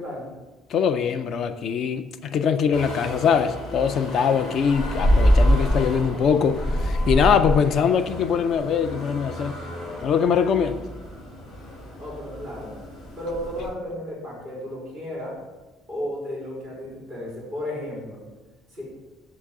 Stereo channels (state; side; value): quieter; right; 4.1 dB